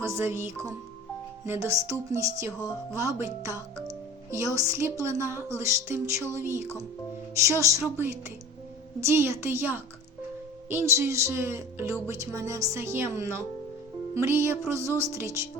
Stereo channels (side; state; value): both; normal; correlation 0.39